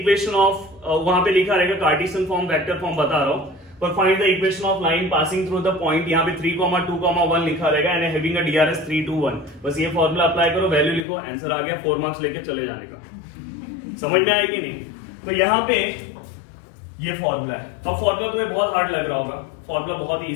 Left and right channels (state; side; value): drops out; right; at 11.1 s